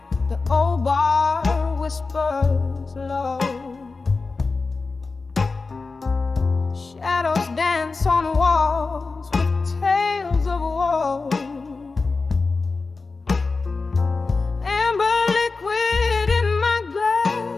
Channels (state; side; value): quieter; right; 4.0 dB